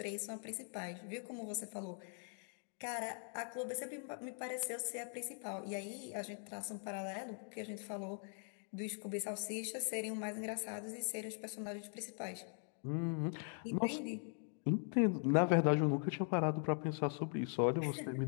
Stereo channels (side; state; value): right; silent; 50 dB below the other